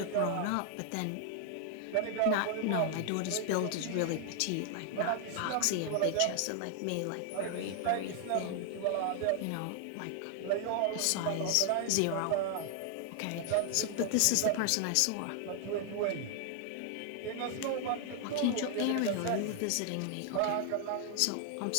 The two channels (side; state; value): both; different; correlation 0.00